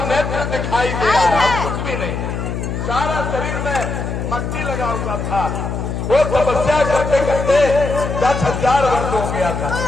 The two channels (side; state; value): left; noise; hum, 4 dB below the sound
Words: नेत्र दिखाई दे रहा है, कुछ भी नहीं, सारा शरीर में मट्टी लगा हुआ था। वो तपस्या करते करते 10,000 वर्ष हो गया